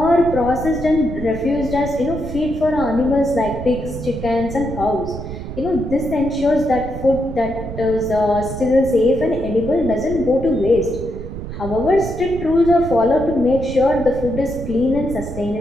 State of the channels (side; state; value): right; noise; rumble, 9 dB below the sound